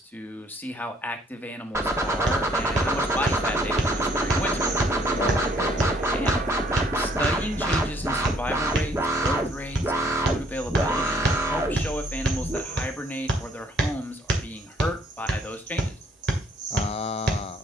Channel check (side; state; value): both; normal; correlation 0.64